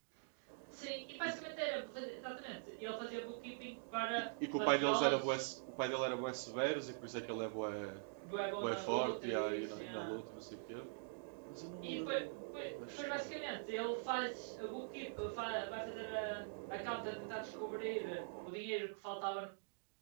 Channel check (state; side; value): silent; left; digital silence